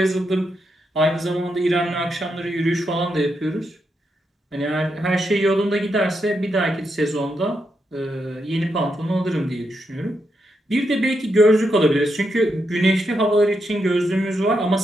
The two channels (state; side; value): normal; both; correlation 0.82